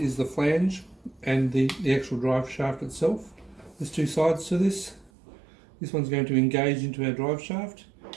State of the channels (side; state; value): left; drops out; at 5.1 s